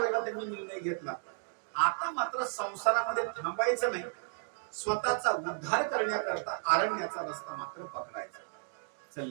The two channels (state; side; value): silent; left; digital silence